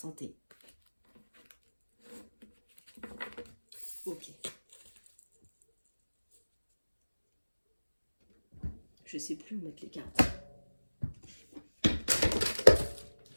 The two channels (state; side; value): inverted; both; correlation -1.00